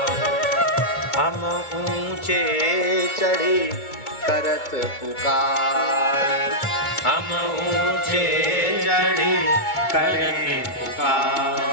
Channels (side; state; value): right; late; 2.3 ms